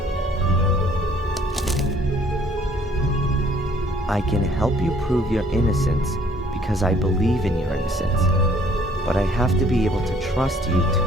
I can help you prove your innocence because I believe in your innocence. But I have to be able to trust you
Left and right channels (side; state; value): both; normal; correlation 0.59